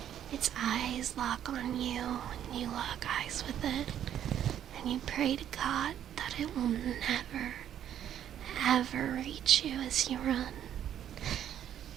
Its eyes lock on you, and you lock eyes with it, and you pray to God that it will never, ever reach you as you run.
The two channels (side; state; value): left; quieter; 10.4 dB